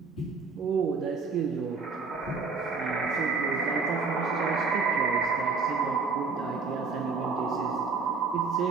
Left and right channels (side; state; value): left; quieter; 4.6 dB